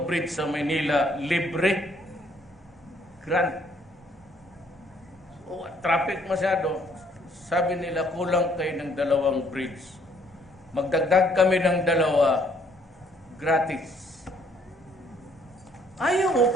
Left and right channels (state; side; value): normal; both; correlation 0.65